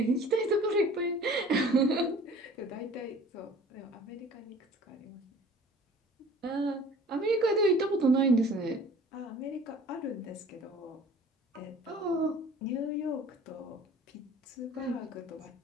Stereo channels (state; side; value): normal; both; correlation 0.48